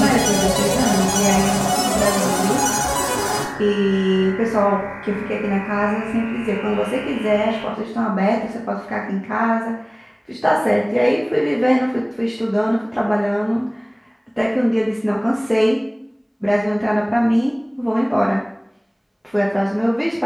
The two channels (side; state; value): both; identical; correlation 1.00